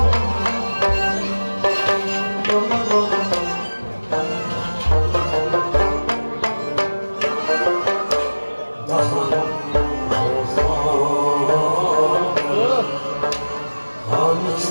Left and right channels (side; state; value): both; inverted; correlation -1.00